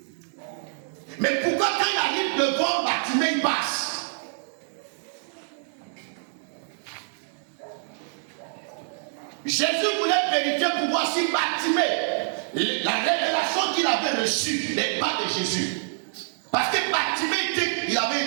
Mais pourquoi quand il arrive devant Bartimée, il passe? Jésus voulait vérifier pour voir si Bartimée, la révélation qu'il avait reçue n'est pas de Jésus. Parce que Bartimée, il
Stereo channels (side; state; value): left; silent; 61 dB below the other